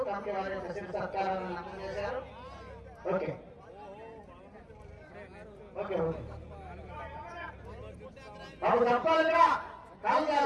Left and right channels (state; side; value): identical; both; correlation 1.00